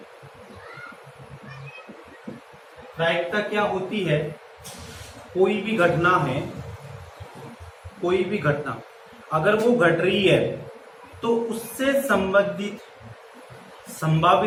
क्या होती है? कोई भी घटना है, कोई भी घटना अगर वो घट रही है तो उससे संभावित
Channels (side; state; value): both; identical; correlation 1.00